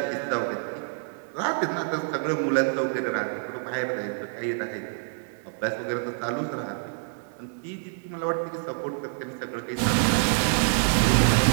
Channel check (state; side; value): silent; left; 60 dB below the other